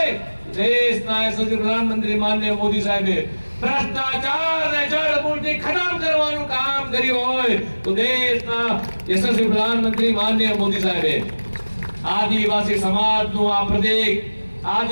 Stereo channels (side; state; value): both; inverted; correlation -1.00